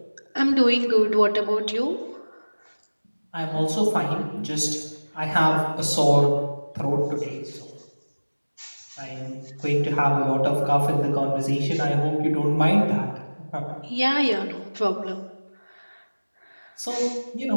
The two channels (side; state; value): both; inverted; correlation -1.00